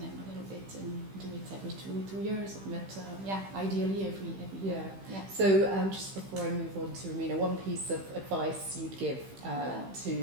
a little bit and do it every two years. But ideally every year. Yeah. So just before I move on to Romina, one piece of advice you'd give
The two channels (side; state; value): left; late; 15 ms